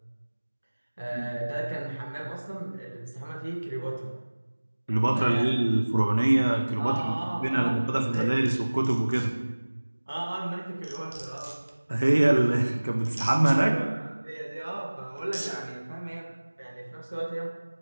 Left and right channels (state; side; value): inverted; both; correlation -1.00